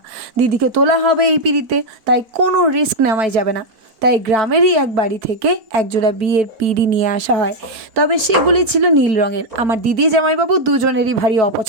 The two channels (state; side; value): late; left; 4.2 ms